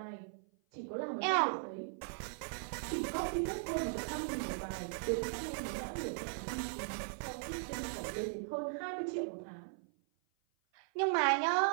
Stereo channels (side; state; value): left; silent; 52 dB below the other